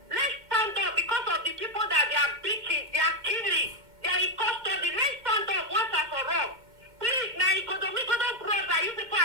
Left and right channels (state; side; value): late; left; 2.2 ms